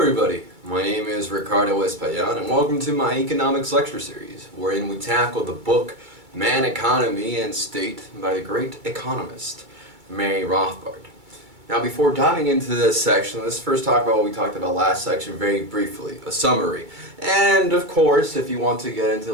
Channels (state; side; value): late; left; 2.3 ms